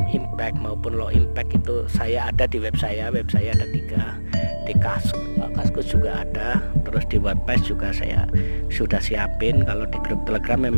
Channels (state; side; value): inverted; both; correlation -1.00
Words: impact maupun low impact, itu saya ada di web saya ada 3, di Kaskus juga ada, terus di WordPress juga saya sudah siapin. Kalau di grup Telegram